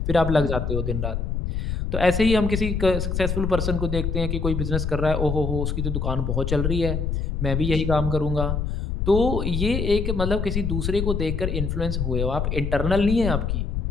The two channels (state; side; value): noise; left; rumble, 1 dB below the sound